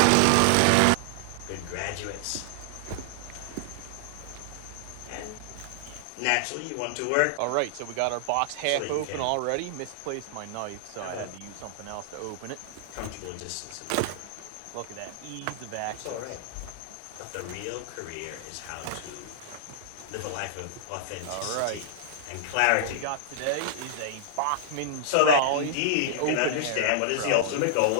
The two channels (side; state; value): both; different; correlation -0.01